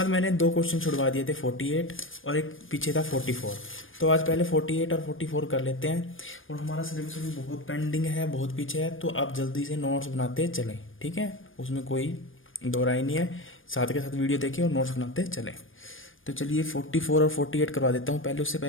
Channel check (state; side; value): late; right; 0.58 ms